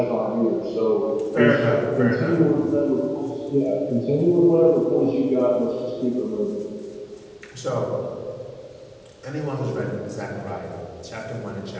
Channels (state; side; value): identical; both; correlation 1.00